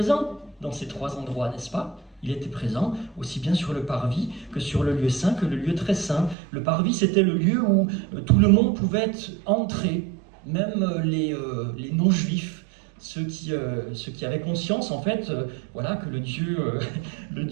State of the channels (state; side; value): drops out; left; at 6.4 s